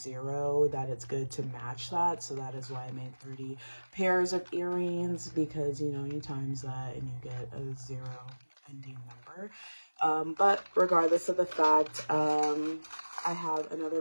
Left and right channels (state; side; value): inverted; both; correlation -1.00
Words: that it's good to match that. So that is why I made 30 pairs of earrings, because, you know, you times that and you get a 0 ending number. But regardless of the fact, I have another